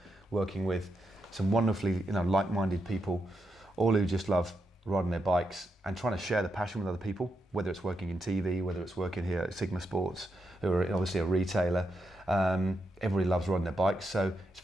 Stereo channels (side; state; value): both; normal; correlation 0.84